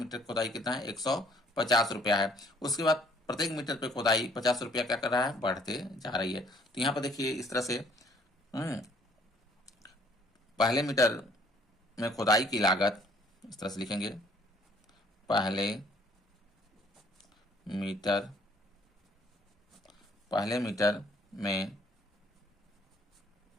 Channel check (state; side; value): normal; both; correlation 0.60